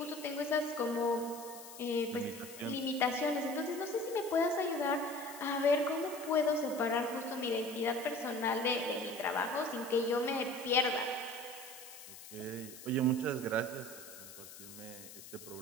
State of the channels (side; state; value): left; noise; hiss, 15 dB below the sound